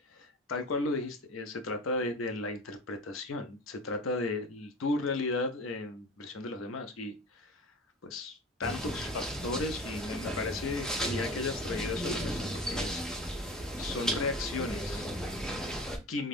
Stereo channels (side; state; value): both; normal; correlation 0.35